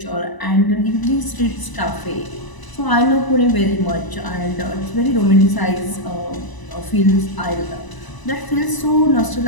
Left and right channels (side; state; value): right; late; 1.0 ms